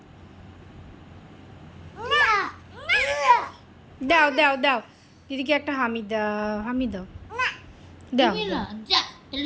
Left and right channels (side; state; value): both; identical; correlation 1.00